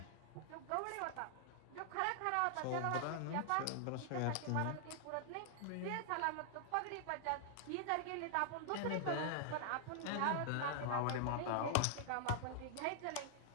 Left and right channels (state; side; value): different; both; correlation -0.01